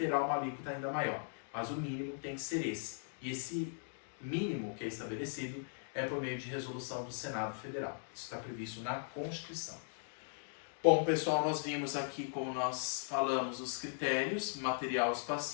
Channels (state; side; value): silent; right; digital silence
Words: uma alíquota ainda maior. Mas o mínimo tem que ser esse. E esse mínimo que é estabelecido é por meio de resolução do Senado Federal. Isso está previsto na Constituição. Bom, pessoal, nós vimos aqui, como nós falamos, os critérios material